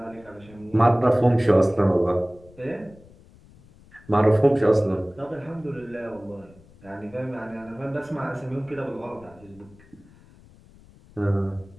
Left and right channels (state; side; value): noise; left; rumble, 25 dB below the sound